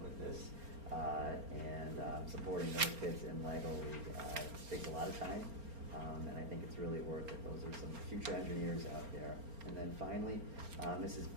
with this and supporting those kids in Lego League. It takes a lot of time, and I think it's really worth it. Those are some future engineers out there. And then finally, Mrs.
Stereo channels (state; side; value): late; left; 4.3 ms